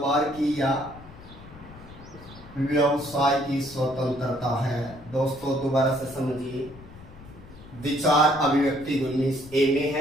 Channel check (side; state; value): left; noise; rumble, 18 dB below the sound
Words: की या व्यवसाय की स्वतंत्रता है। दोस्तों दोबारा से समझिए, विचार अभिव्यक्ति 19A में